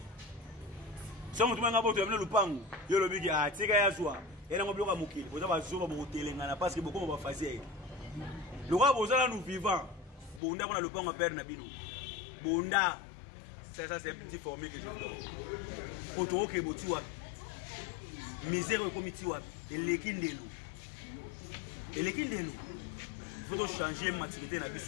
Si on a un lupango, il y a le big à Tika Yazwa, et on a un bloc à Mouki. On a un zoom à Moutelé, parce que beaucoup vont faire. Le roi Bozala nous vivants. Bunda, on a le pan à perdre Nabino. Bunda, ça c'est un petit formé que je donne. Autour qui est Botua. misère au comité et l'équindelo. Et l'équindelo. Il faut changer maturité na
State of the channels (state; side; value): drops out; right; at 10.4 s